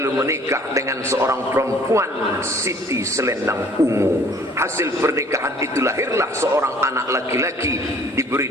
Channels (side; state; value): both; normal; correlation 0.55